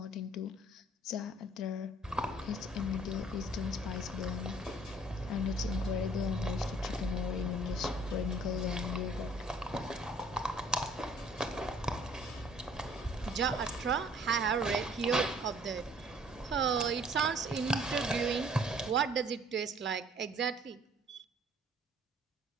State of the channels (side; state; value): both; normal; correlation 0.57